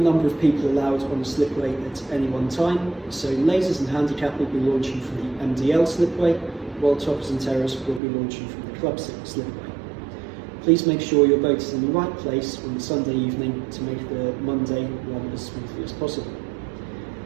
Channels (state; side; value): drops out; left; at 8.0 s